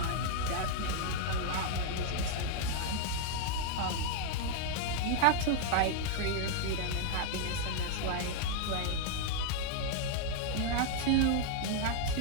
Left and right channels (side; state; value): both; different; correlation 0.00